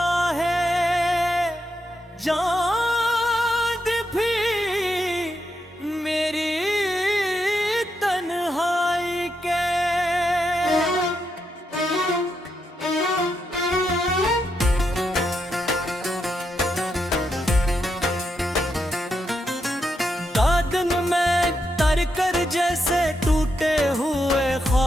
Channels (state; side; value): normal; both; correlation 0.83